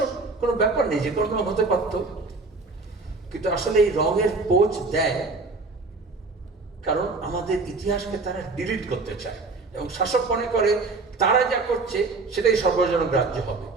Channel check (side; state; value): left; quieter; 3.8 dB